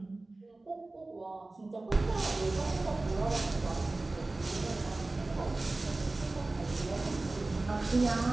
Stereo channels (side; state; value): left; quieter; 3.1 dB